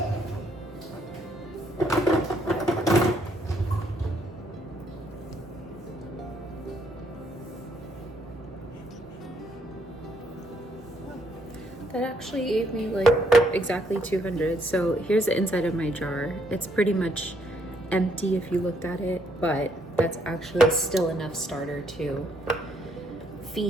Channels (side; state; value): both; normal; correlation 0.71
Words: That actually gave me like exactly 200. So here's the inside of my jar. It's pretty much empty if you looked at it, but that's actually still enough starter to